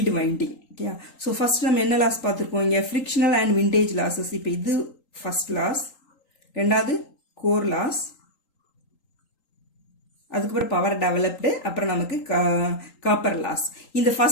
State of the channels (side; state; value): right; late; 3.8 ms